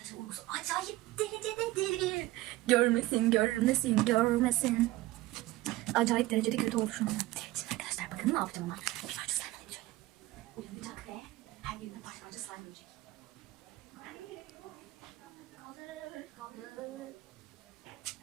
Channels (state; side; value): quieter; left; 17.7 dB